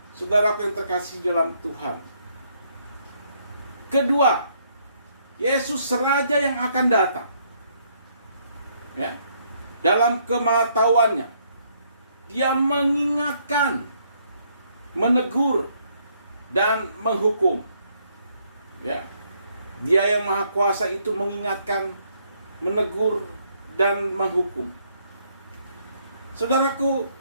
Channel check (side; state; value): both; inverted; correlation -0.70